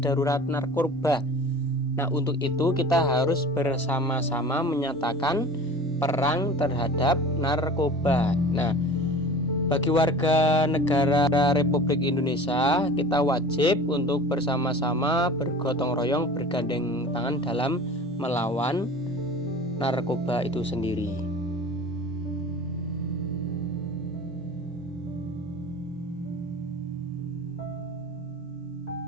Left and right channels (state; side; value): normal; both; correlation 0.39